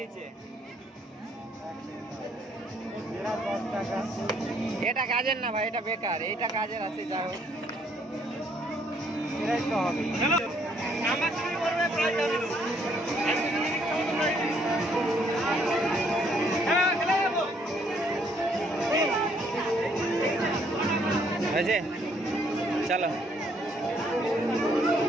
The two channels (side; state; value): both; normal; correlation 0.67